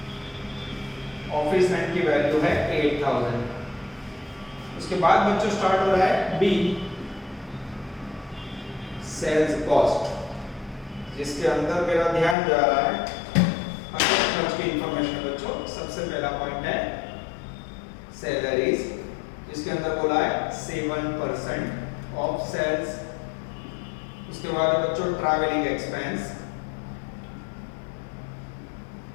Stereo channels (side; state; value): right; drops out; at 12.4 s